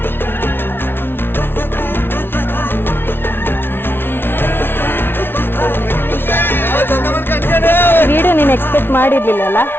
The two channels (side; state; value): right; late; 0.11 ms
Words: ವಿಡಿಯೋ ನೀನು ಎಕ್ಸ್ಪೆಕ್ಟ್ ಮಾಡಿರ್ಲಿಲ್ಲಲ್ಲ,